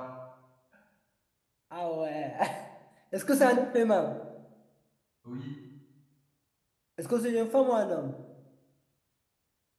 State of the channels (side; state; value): both; identical; correlation 1.00